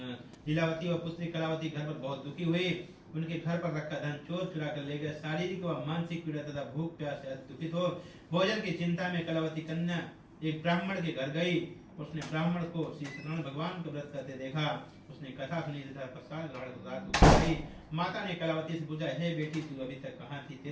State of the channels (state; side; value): identical; both; correlation 1.00